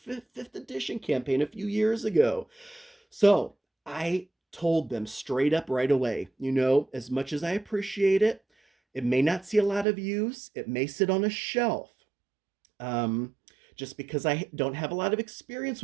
edition campaign a few years ago. So I told them straight up right away, you know, as much as I appreciate it, it may not see a lot of use. It may sit on a shelf. Um, just because I don't have a lot of experience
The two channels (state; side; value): drops out; left; at 9.9 s